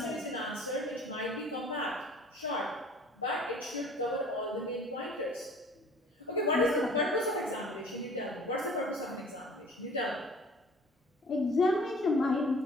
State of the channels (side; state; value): both; normal; correlation 0.49